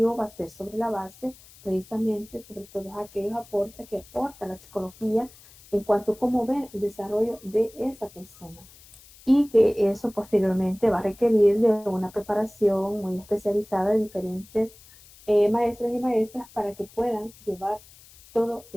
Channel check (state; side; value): noise; left; hiss, 23 dB below the sound